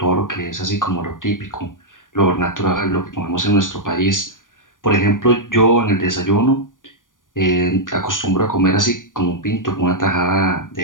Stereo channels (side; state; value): right; late; 0.88 ms